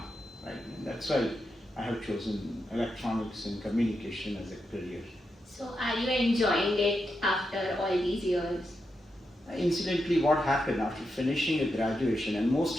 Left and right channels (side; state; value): both; normal; correlation 0.86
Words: right? And that's why I have chosen electronics and communication as a career. So, are you enjoying it after all these years? Incidentally, what happened after finishing a graduation, and